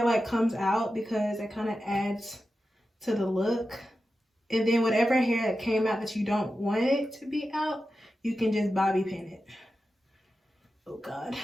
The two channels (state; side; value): normal; both; correlation 0.92